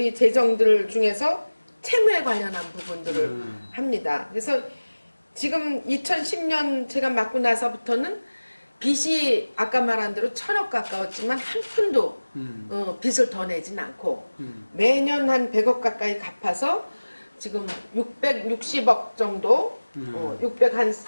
재정들 중에서 채무에 관련한 부분들을 합니다. 그래서 지금 2010년 제가 맡고 나서부터는 빚이 아까 말한 대로 1,000억 가까웠지만 한 푼도 빚을 더 내진 않고 매년 한 100억 가까이 갚아서 지금 660억 정도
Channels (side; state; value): both; inverted; correlation -1.00